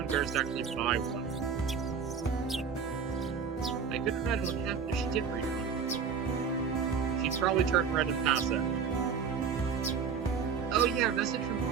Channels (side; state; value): left; quieter; 6.3 dB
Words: to actually buy one. I couldn't imagine what happened if she did read one. She'd probably turn red and pass out. Oh yeah, a message from